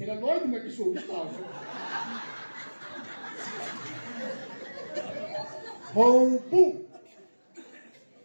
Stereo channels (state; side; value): inverted; both; correlation -1.00